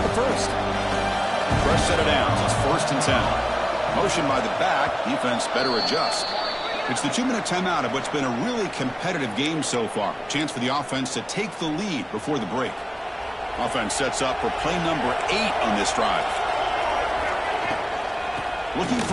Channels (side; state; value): both; identical; correlation 1.00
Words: the first. Fresh set of downs. It's 1st and 10. Motion by the back. Defense better adjust. It's the 2-minute timeout of what's been a really competitive game so far. Chance for the offense to take the lead before the break. Offense sets up for play number 8 on this drive. Looking